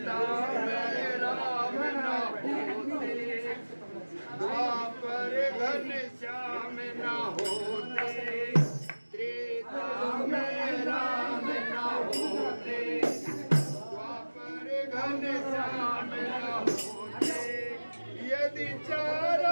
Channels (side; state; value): both; inverted; correlation -1.00